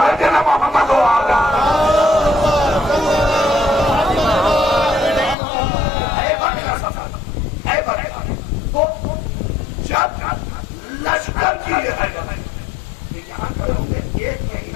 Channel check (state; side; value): drops out; right; at 5.4 s